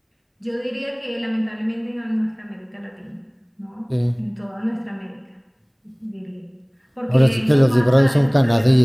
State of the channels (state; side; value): identical; both; correlation 1.00